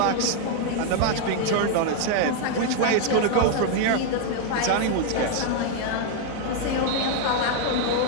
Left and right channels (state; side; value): different; both; correlation 0.00